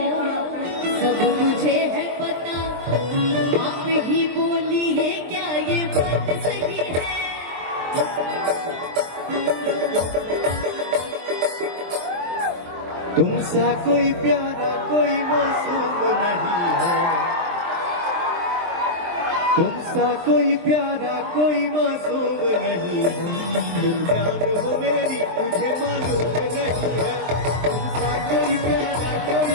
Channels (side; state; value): left; late; 23 ms